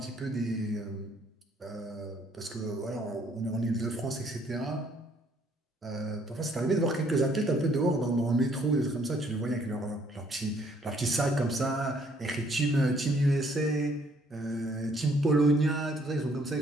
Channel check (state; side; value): normal; both; correlation 0.65